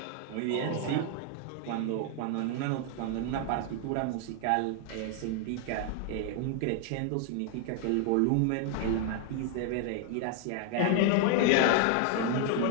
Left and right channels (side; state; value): both; different; correlation 0.00